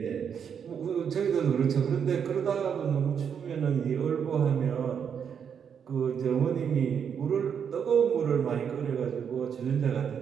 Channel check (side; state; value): left; quieter; 7.5 dB